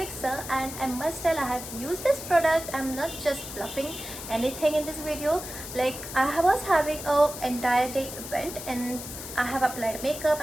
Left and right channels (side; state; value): left; noise; hiss, 10 dB below the sound